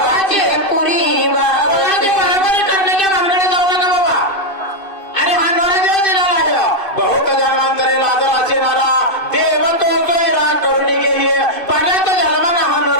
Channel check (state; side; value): late; right; 2.5 ms